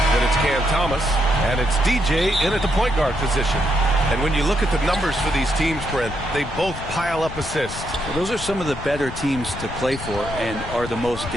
Then it's Cam Thomas. And it's DJ in at the point guard position. And when you look at the numbers for these teams, Brent, they both pile up assists. Well, those are some of the better teams to play for and are the most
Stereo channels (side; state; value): left; noise; rumble, 10 dB below the sound